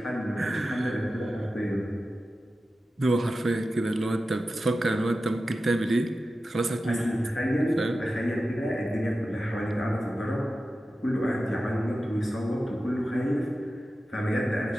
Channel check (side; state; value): both; normal; correlation 0.93